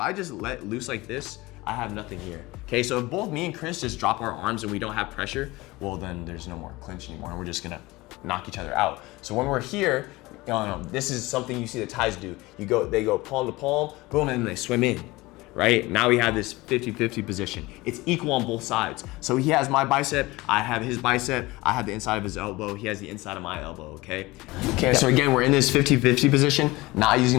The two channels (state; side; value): quieter; right; 20.9 dB